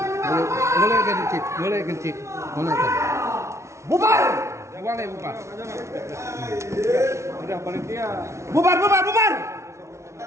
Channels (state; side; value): late; left; 0.13 ms